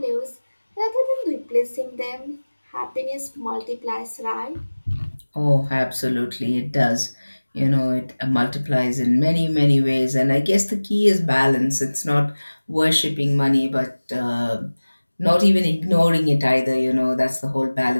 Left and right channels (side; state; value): both; inverted; correlation -1.00